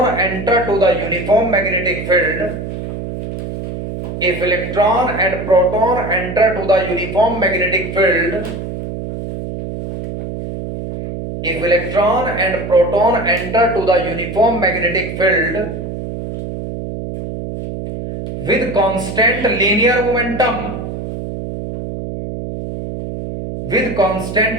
enter to the uniform magnetic field, if electron and proton enter to the uniform magnetic field, if electron and proton enter to the uniform magnetic field with constant linear momentum,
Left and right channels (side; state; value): right; noise; hum, 7 dB below the sound